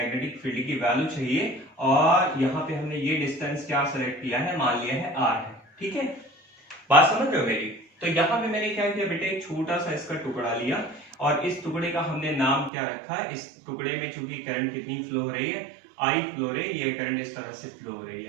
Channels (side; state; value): left; drops out; at 12.7 s